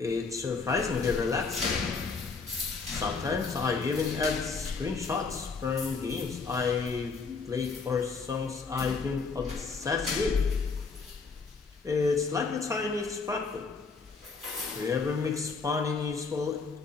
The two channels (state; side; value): quieter; right; 4.6 dB